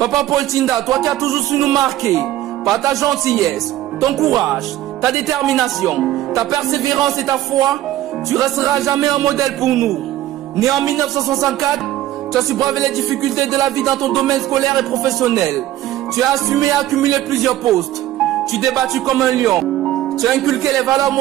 Paul Thinda, toi qui as toujours su nous marquer par ta gentillesse, ton courage, ta détermination, ta persévérance et ta foi, tu resteras jamais un modèle pour nous. Né en 1964, tu as su braver les difficultés de la vie dans ton domaine scolaire et professionnel. Tu as assumé et accumulé plusieurs postes. Tu t'es battu comme un lion. Tu as inculqué les valeurs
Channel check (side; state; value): left; quieter; 14.0 dB